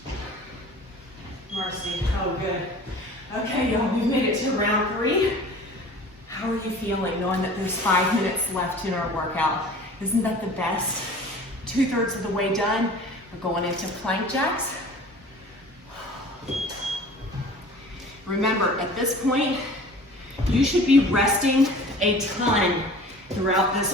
Oh, good. Okay, y'all, we've made it to round 3. How are you feeling knowing that there's 5 minutes left in our workout? Isn't that the best? 2/3 of the way done. We're going into plank jacks. Remember, at this point, you should be resting a ton throughout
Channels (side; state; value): both; normal; correlation 0.43